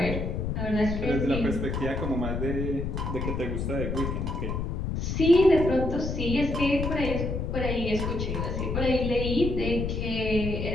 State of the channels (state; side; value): noise; left; rumble, 2 dB below the sound